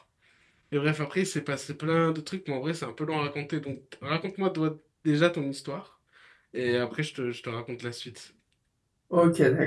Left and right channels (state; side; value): identical; both; correlation 1.00